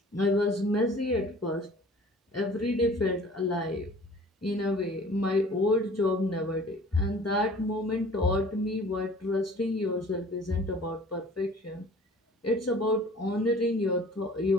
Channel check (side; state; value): both; normal; correlation 0.48